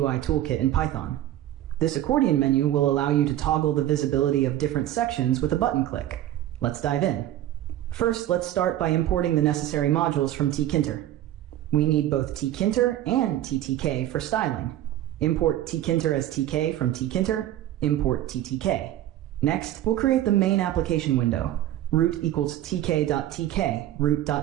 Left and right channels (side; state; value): left; quieter; 13.1 dB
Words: toolkit in Python. This accordion menu will allow you to toggle the visibility of different sections with a button click. Let's dive in. First, let's start by importing the necessary modules from Tkinter. We need both Tkinter and TTK for styling. Import Tkinter as TK from Tkinter, import TTK. Next, we'll create the main application window. Root equals tk.tk,